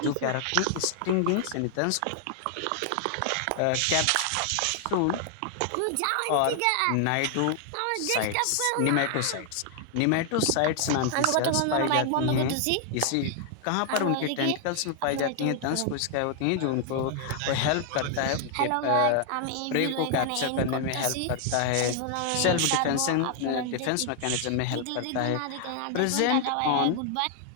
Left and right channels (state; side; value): different; both; correlation 0.00